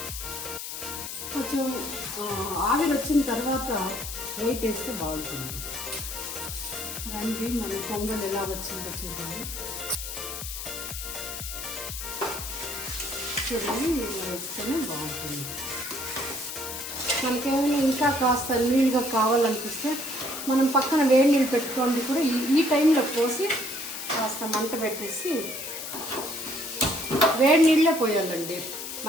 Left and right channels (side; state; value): left; noise; hiss, 7 dB below the sound